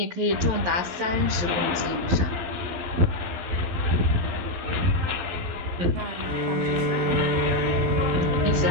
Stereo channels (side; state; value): left; late; 12 ms